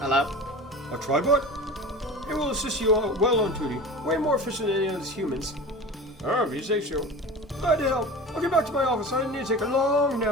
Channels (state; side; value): normal; both; correlation 0.34